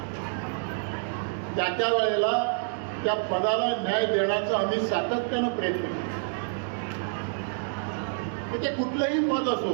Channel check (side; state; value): left; silent; digital silence